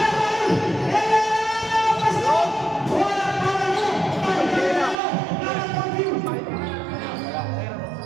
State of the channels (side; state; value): left; drops out; at 5.0 s